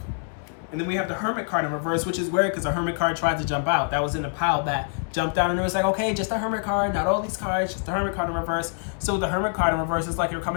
And then we have the Hermit card in reverse, which is weird because the Hermit card tried to jump out. That was in the pile that jumped out, and it was like, okay, just a Hermit card, not all these cards, just the Hermit card in reverse. So the Hermit card in reverse is like you're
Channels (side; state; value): right; silent; digital silence